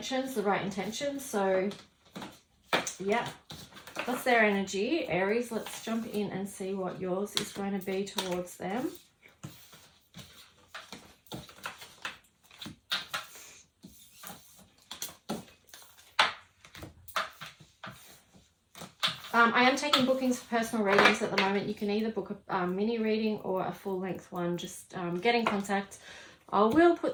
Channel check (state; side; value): identical; both; correlation 1.00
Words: the right intentions. So yeah, that's their energy. Aries, let's jump in and see what yours is going to be towards them. I am taking bookings for personal readings at the moment. You can either book a mini reading or a full-length one. Just get in contact. I will